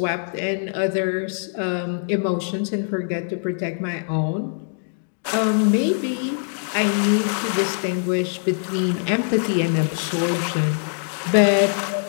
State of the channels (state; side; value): silent; right; 63 dB below the other